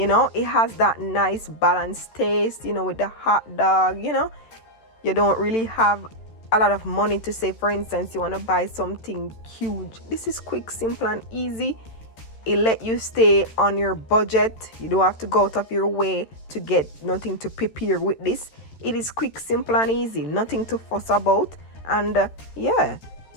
know. It has that nice balanced taste, you know, with the hot dog. You know, you don't really have a lot of money to say, for instance, you want to buy something huge. This is quick, simple, and easy. It let you stay on your budget. You don't have to go out of your way to get nothing to prepare with this. It is quick, simple and easy, nothing to fuss about. And yeah,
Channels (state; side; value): late; right; 13 ms